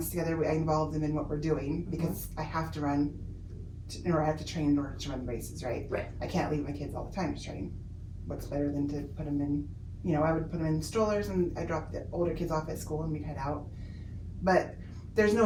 together. I involve them in what we're doing because I have to run, or I have to train in order to run the races, right? Right. I can't leave my kids all the time to train. What's better than to put them in, I would put them in strollers and I drop the older kids off at school and we'd head out. But there's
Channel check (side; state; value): both; identical; correlation 1.00